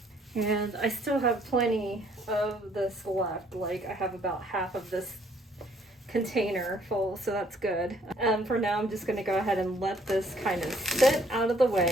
and I still have plenty of this left. Like, I have about half of this container full, so that's good. For now, I'm just going to go ahead and let this kind of sit out of the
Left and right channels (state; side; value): normal; both; correlation 0.63